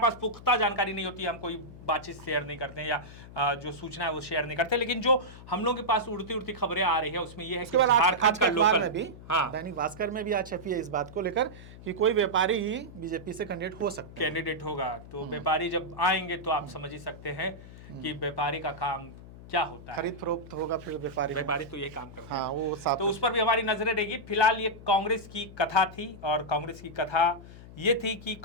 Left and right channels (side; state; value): left; noise; hum, 16 dB below the sound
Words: पुख्ता जानकारी नहीं होती हम कोई बातचीत शेयर नहीं करते हैं या जो सूचना है वो शेयर नहीं करते। लेकिन जो हम लोग के पास उड़ती उड़ती खबरें आ रही है उसमें ये है कि आज का अखबार में भी, दैनिक भास्कर में भी आज छपी है इस बात को लेकर कि कोई व्यापारी ही बीजेपी से कैंडिडेट होगा। तो व्यापारी जब आएंगे तो आप समझ ही सकते हैं कि व्यापारी का काम क्या होता है, खरीद फरोख्त होगा, फिर व्यापारी तो ये काम करते हैं। वो तो उस पर भी हमारी नजरें रहेगी। फिलहाल ये कांग्रेस की कथा थी, और कांग्रेस की कथा ये थी कि